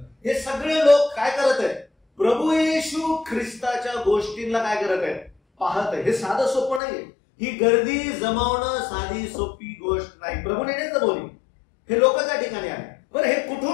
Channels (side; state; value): right; drops out; at 6.8 s